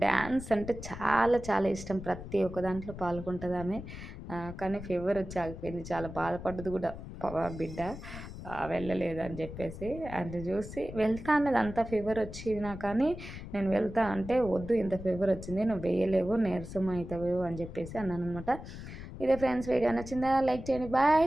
డాన్స్ అంటే చాలా చాలా ఇష్టం. ప్రతి ఒక్క దాంట్లో పాల్గొంటదామె. కానీ ఫీవర్ వచ్చి ఆగిపోయింది. చాలా బాధపడ్డది కూడా బిడ్డ. వెళ్ళలేదు అని చెప్పేసి. అది చూసి వెళ్తా అన్నది అంత ఫీవర్ వచ్చినా కానీ నేను వెళ్తా అంటే వద్దు ఇంత ఫీవర్ వచ్చింది నువ్వు వేయలేవు నీరసం అవుతావు అని చెప్పేసి అన్నాననమాట. ఇదే ఫ్రెండ్స్ వీడియో నచ్చిందా? లైక్ చేయండి. Bye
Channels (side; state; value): left; noise; rumble, 11 dB below the sound